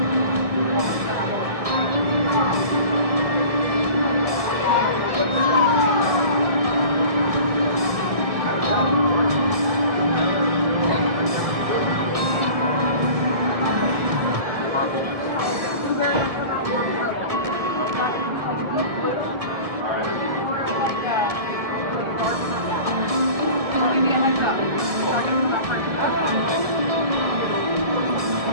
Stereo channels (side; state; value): left; late; 1.7 ms